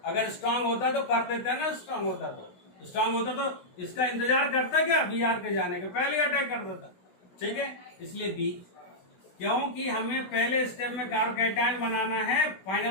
अगर स्ट्रांग होता तो कर देता है ना। स्ट्रांग होता तो इसका इंतजार करता क्या? Br के जाने के पहले अटैक कर देता। ठीक है, इसलिए बी, क्योंकि हमें पहले स्टेप में कार्ब कैटायन बनाना है,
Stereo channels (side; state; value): right; late; 16 ms